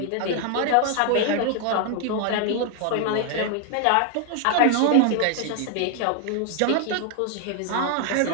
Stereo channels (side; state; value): both; different; correlation 0.00